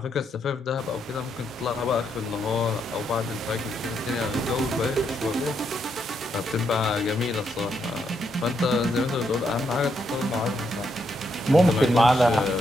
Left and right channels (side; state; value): both; normal; correlation 0.78